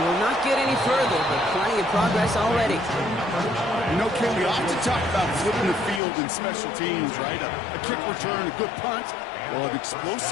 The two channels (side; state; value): right; drops out; at 6.0 s